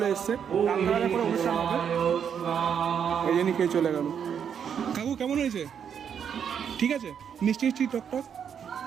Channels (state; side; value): quieter; left; 7.9 dB